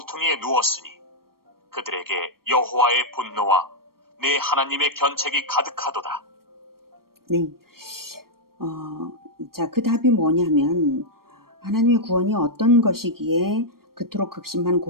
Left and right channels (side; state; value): left; late; 0.93 ms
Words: 누웠으니 그들에게 여호와의 분노와 내 하나님의 견책이 가득하도다. 네. 자, 그 답이 뭐냐면 하나님의 구원이 어떤 것이기에 그토록 극심한